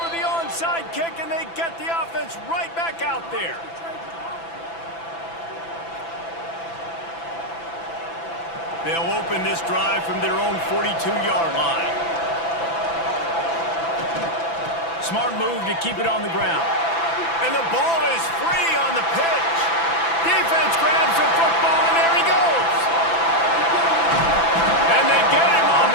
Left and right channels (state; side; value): late; right; 6.0 ms